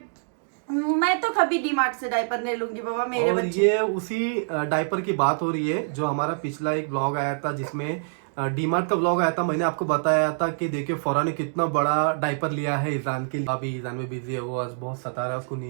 मैं तो कभी डीमार्ट से डायपर नहीं लूंगी बाबा मेरे और बच्चे। ये उसी डायपर की बात हो रही है जो हमारा पिछला एक ब्लॉग आया था, जिसमें डीमार्ट का ब्लॉग आया था। मैंने आपको बताया था कि देखिए फौरा ने कितना बड़ा डायपर लिया है ईजान के लिए। अभी ईजान में बिजी है, वो आज बहुत सता रहा है, उसको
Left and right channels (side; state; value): left; silent; digital silence